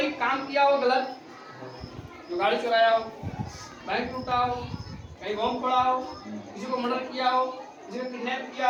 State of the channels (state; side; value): identical; both; correlation 1.00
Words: काम किया हो गलत, जो गाड़ी चुराया हो, बैंक लूटा हो, कहीं बम फोड़ा हो, किसी को मर्डर किया हो, किसी को किडनैप